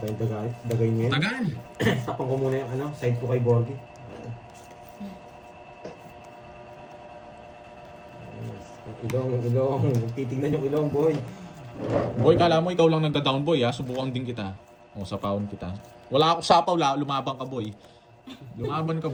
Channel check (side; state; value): both; identical; correlation 1.00